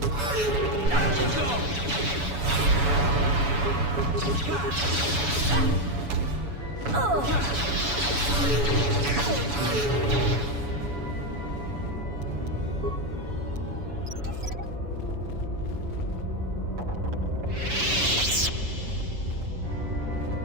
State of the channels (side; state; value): left; late; 7.0 ms